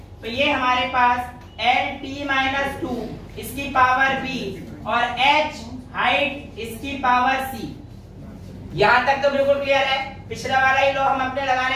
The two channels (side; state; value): both; identical; correlation 1.00